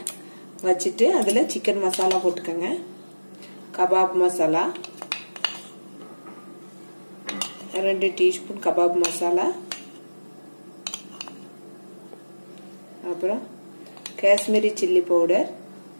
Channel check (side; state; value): both; inverted; correlation -1.00